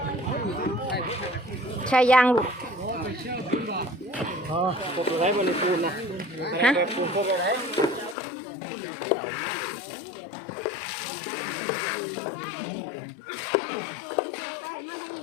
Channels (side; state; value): right; drops out; at 8.2 s